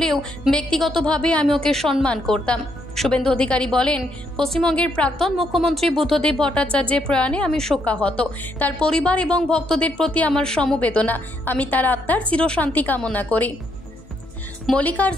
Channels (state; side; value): normal; both; correlation 0.75